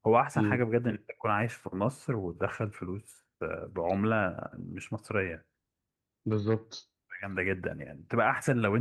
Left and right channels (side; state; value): both; identical; correlation 1.00